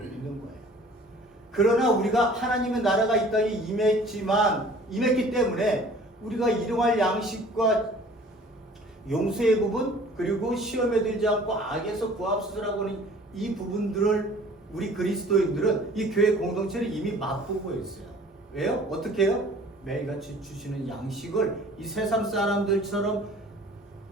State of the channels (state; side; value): normal; both; correlation 0.50